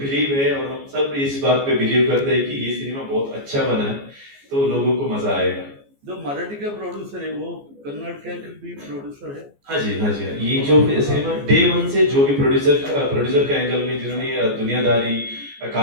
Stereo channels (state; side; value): late; left; 14 ms